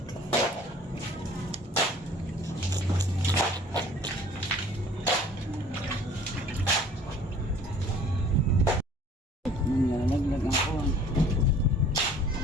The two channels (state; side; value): normal; both; correlation 0.51